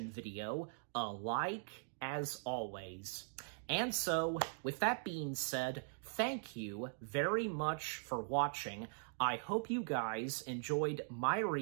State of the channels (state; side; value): silent; left; digital silence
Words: video a like, as always. And so, with that being said, thank you very much for watching. I hope you guys enjoyed my